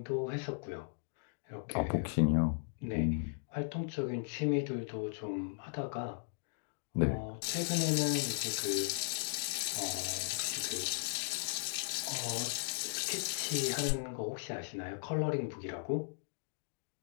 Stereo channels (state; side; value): silent; right; digital silence